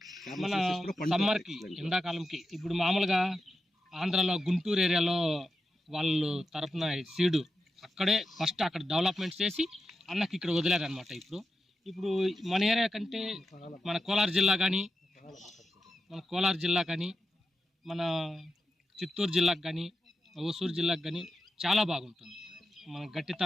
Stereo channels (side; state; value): both; normal; correlation 0.89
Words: మన సమ్మర్కి, ఎండాకాలంకి. ఇప్పుడు మామూలుగా ఆంధ్రాలో గుంటూరు ఏరియాలో వాళ్ళు తరపున సీడు అక్కడే ఫస్ట్ అక్కడ డెవలప్మెంట్ చేసి అన్నకి ఇక్కడ వదిలేరనమాట. ఇప్పుడు మన ఏరియా కంటే మన కోలార్ జిల్లా కానీ మన చిత్తూరు జిల్లాకు కానీ ఓసూరు జిల్లాకు కానీ చాలా బాగుంటుంది. మన